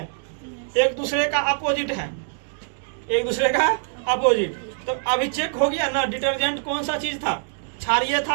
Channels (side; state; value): left; silent; digital silence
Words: एक दूसरे का अपोजिट है, एक दूसरे का अपोजिट। तो अभी चेक हो गया ना डिटर्जेंट कौन सा चीज था, क्षारीय